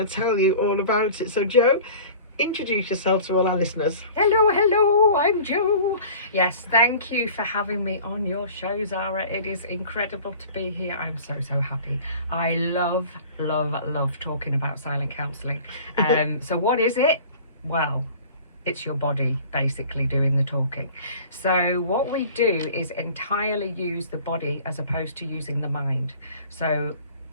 to tell you all about it. So Jo, introduce yourself to all our listeners. Hello, I'm Jo. Yes, thank you for having me on your show, Zara. It is incredible to be here. I'm so happy. I love talking about silent counselling. So what is it? Well, it's your body basically doing the talking. So what we do is entirely use the body as opposed to using the mind. So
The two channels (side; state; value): both; inverted; correlation -0.44